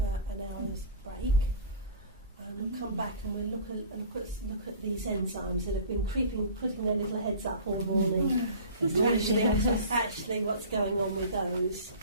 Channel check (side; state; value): both; inverted; correlation -0.40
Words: an hour's break. And we'll come back and we'll look at these enzymes that have been putting their little heads up all the morning. actually what's going on with those.